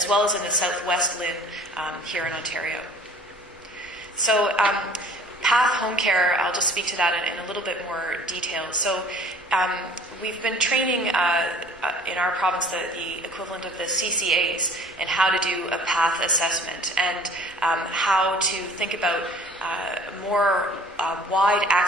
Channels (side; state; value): both; normal; correlation 0.50